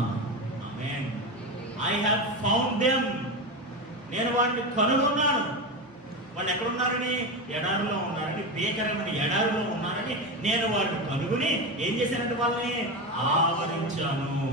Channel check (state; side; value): normal; both; correlation 0.19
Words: Amen. I have found them. నేను వారిని కనుగొన్నాను. వాళ్ళు ఎక్కడున్నారని? ఎడారిలో ఉన్నారని, భీకరమైన ఎడారిలో ఉన్నారని నేను వారిని కనుగొని ఏం చేశానంటే వాళ్ళని ఆవరించాను.